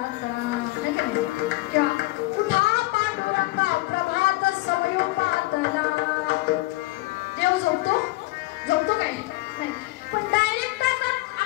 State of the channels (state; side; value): quieter; right; 20.9 dB